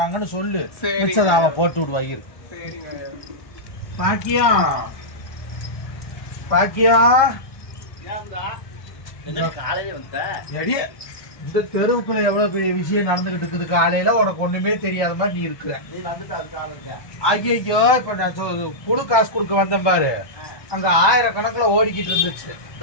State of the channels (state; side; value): late; right; 1.2 ms